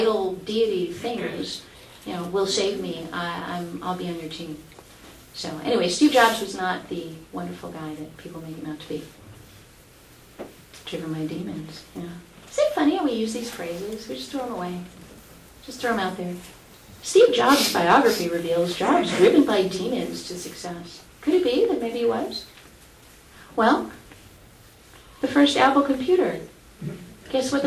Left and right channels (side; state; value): both; identical; correlation 1.00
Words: deity things, will save me, I'll be on your team. So anyway, Steve Jobs was not the wonderful guy that people make him out to be. Driven by demons. Yeah. Isn't it funny how we use these phrases? We just throw them away. Just throw them out there. Steve Jobs' biography reveals Jobs driven by demons to success. Could it be that maybe he was? Well, the first Apple computer. Guess what